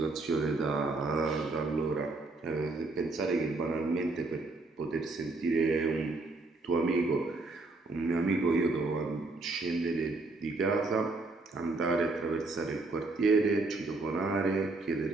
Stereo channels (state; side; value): quieter; left; 3.4 dB